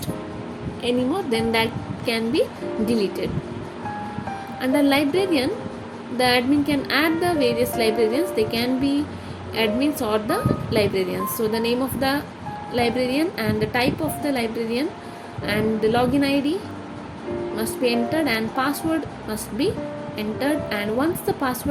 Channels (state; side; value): identical; both; correlation 1.00